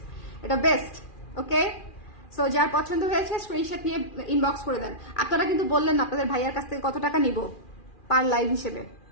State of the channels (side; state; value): right; late; 2.4 ms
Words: এটা বেস্ট। ওকে, সো যার পছন্দ হয়েছে স্ক্রিনশট নিয়ে ইনবক্স করে দেন। আপনারা কিন্তু বললেন না আপনাদের ভাইয়ার কাছ থেকে কত টাকা নিব পার লাইভ হিসেবে,